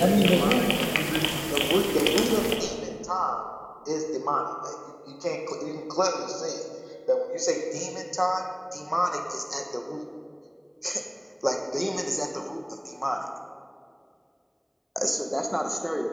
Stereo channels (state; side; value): identical; both; correlation 1.00